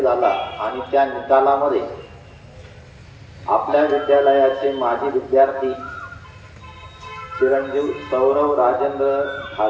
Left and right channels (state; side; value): identical; both; correlation 1.00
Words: झाला आणि त्या निकालामध्ये आपल्या विद्यालयाचे माजी विद्यार्थी चिरंजीव सौरव राजेंद्र